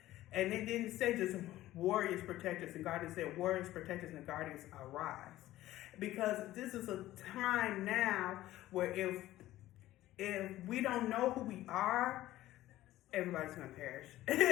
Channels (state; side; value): quieter; right; 15.2 dB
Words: And it didn't say just warriors, protectors, and guardians. It said warriors, protectors, and guardians arise. Because this is a time now where if we don't know who we are, everybody's gonna perish.